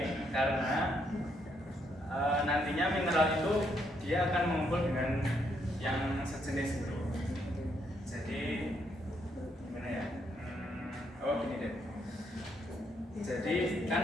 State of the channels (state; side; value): normal; both; correlation 0.75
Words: karena nantinya mineral itu dia akan mengumpul dengan yang sejenis gitu. Jadi gimana ya? Oh gini deh. Jadi